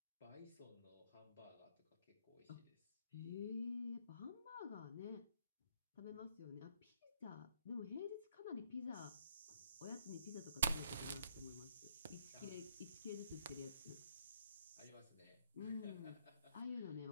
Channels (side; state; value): both; inverted; correlation -0.68